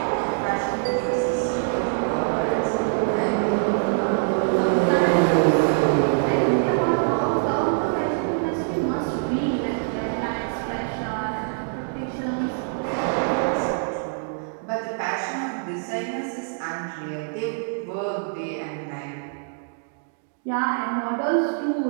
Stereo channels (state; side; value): silent; left; digital silence